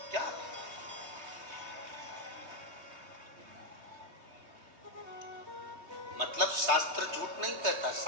क्या? मतलब शास्त्र झूठ नहीं कहता,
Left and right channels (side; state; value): left; late; 3.2 ms